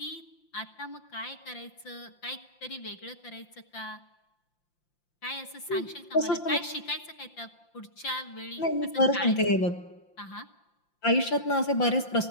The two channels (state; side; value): late; right; 5.8 ms